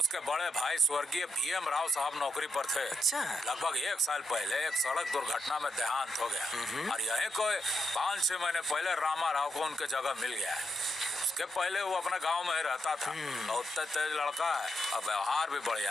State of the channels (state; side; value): normal; both; correlation 0.81